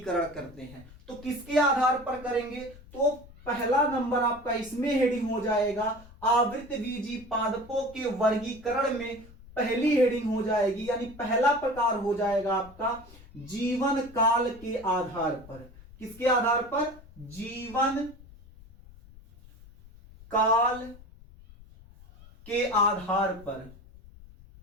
करते हैं। तो किसके आधार पर करेंगे? तो पहला नंबर आपका इसमें हेडिंग हो जाएगा, आवृतबीजी पादपों के वर्गीकरण में पहली हेडिंग हो जाएगी, यानी पहला प्रकार हो जाएगा आपका जीवन काल के आधार पर। किसके आधार पर? जीवन काल के आधार पर।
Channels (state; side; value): noise; left; rumble, 21 dB below the sound